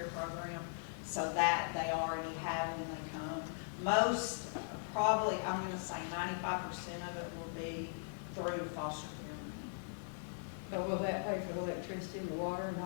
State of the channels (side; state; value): right; silent; digital silence